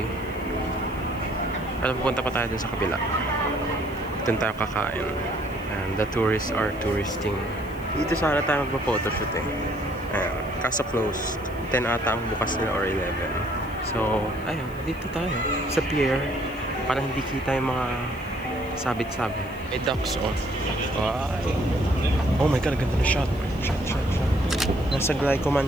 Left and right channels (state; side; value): noise; left; hiss, 25 dB below the sound